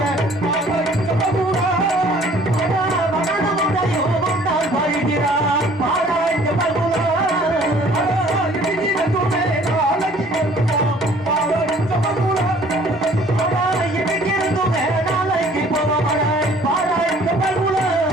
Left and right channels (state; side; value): normal; both; correlation 0.55